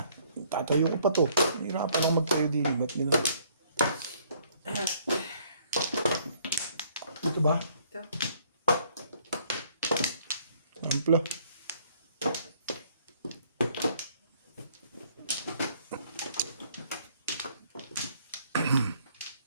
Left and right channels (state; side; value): inverted; both; correlation -0.62